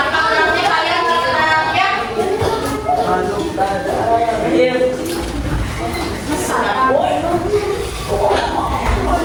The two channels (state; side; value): identical; both; correlation 1.00